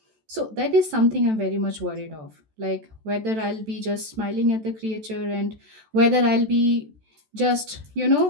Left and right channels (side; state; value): left; late; 14 ms